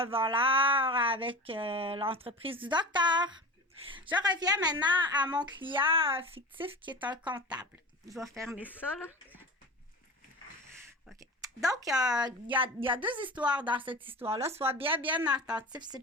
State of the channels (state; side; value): normal; both; correlation 0.32